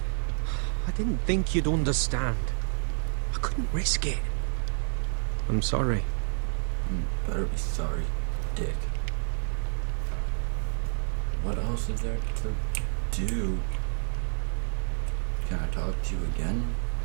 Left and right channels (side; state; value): left; silent; 59 dB below the other